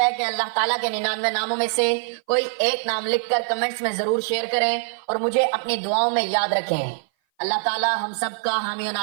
کہ اللہ تعالیٰ کے 99 ناموں میں سے کوئی ایک نام لکھ کر کمنٹس میں ضرور شیئر کریں اور مجھے اپنی دعاؤں میں یاد رکھیں۔ اللہ تعالیٰ ہم سب کا حامی و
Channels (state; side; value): silent; left; 57 dB below the other